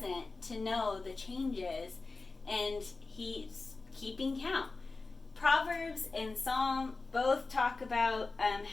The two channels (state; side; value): quieter; right; 3.8 dB